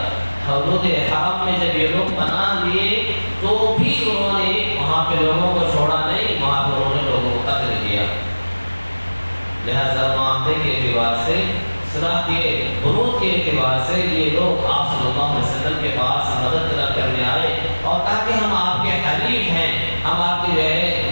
حدود حرم میں جب یہ لوگ پناہ لیے تو بھی انہوں نے وہاں پہ لوگوں کو چھوڑا نہیں، وہاں پہ انہوں نے لوگوں کو قتل کیا۔ لہذا معاہدے کے اعتبار سے، صلح کے بنود کے اعتبار سے یہ لوگ آپ صلی اللہ علیہ وسلم کے پاس مدد طلب کرنے آئے اور کہا کہ ہم آپ کے حلیف ہیں، ہم آپ کے جو ہے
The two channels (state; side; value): inverted; both; correlation -1.00